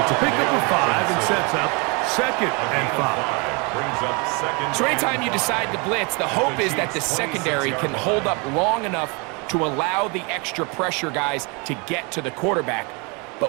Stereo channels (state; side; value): quieter; left; 31.0 dB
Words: It's a pickup of 5 and sets up second and 5. So anytime you decide to blitz, the hope is that the secondary can hold up long enough to allow the extra pressure guys to get to the quarterback.